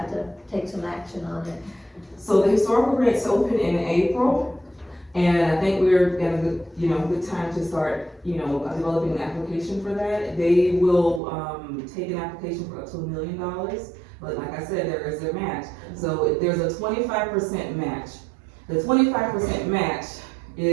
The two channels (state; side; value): drops out; left; at 11.2 s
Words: to take some action on it. So the historical grants open in April, and I think we're at a good, good time to start, developing an application for that. They will, take an application for up to $1 million, but like I said, there is a match. So there's a 25% match. The 25% match